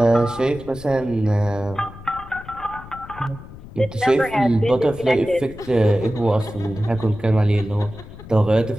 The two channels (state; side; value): noise; left; rumble, 16 dB below the sound